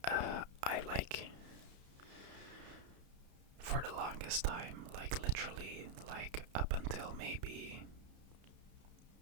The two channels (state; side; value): late; left; 32 ms